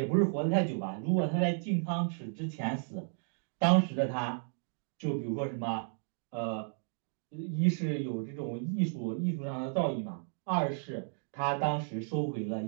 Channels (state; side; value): silent; left; digital silence